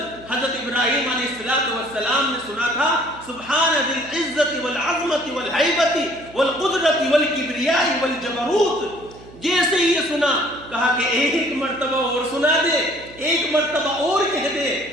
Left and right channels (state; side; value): noise; right; hum, 20 dB below the sound